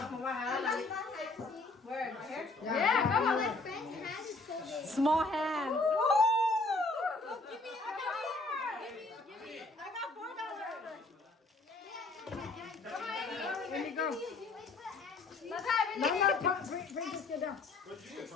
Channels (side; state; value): right; quieter; 3.4 dB